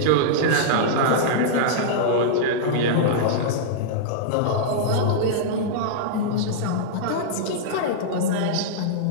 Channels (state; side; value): different; both; correlation -0.02